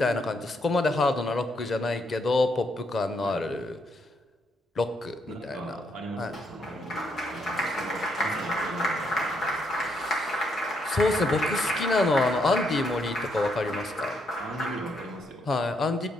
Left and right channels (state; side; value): normal; both; correlation 0.75